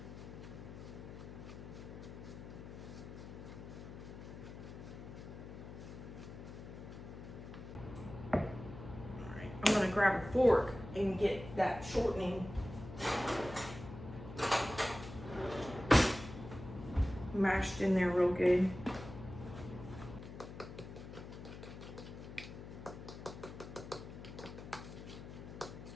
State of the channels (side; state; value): left; noise; hum, 12 dB below the sound